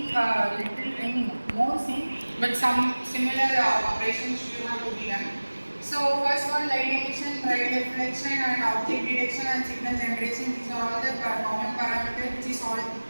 little more same, but some similar operations should have to be done. So first one, light emission, light reflection, and object detection and signal generation. These are all the common parameters which is all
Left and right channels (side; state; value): both; inverted; correlation -1.00